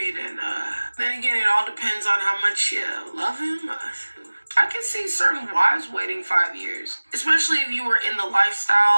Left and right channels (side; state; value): both; inverted; correlation -1.00